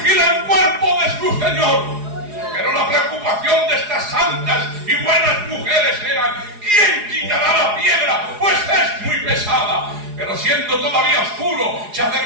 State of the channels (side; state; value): left; late; 4.8 ms